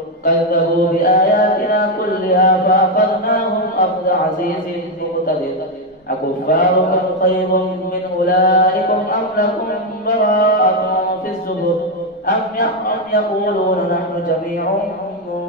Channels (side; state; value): both; normal; correlation 0.05